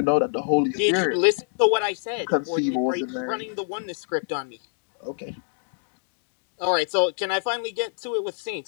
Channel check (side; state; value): right; silent; digital silence